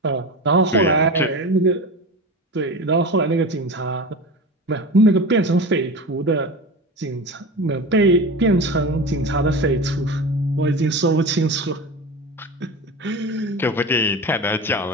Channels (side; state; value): both; normal; correlation 0.28